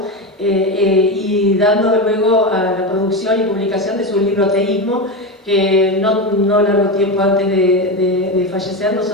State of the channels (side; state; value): both; normal; correlation 0.17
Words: y dando luego a la producción y publicación de su libro Ateísmo, que no largo tiempo antes de fallecer,